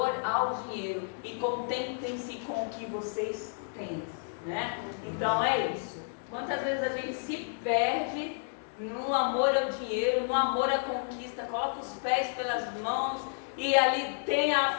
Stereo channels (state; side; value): silent; right; digital silence